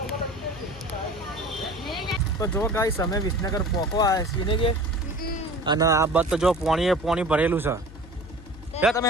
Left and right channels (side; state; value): left; noise; hum, 17 dB below the sound